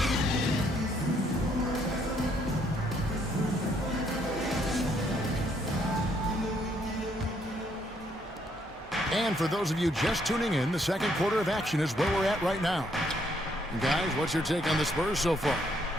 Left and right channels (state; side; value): normal; both; correlation 0.70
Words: And for those of you just tuning in, the second quarter of action is where we're at right now. And guys, what's your take on the Spurs so far?